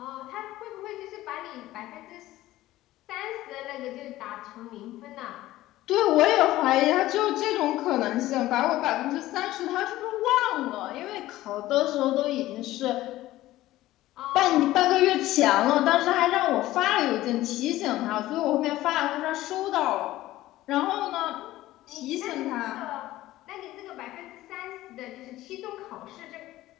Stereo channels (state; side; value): quieter; right; 15.9 dB